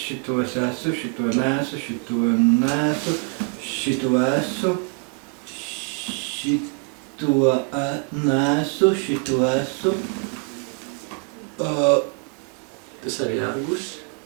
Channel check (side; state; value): left; quieter; 32.3 dB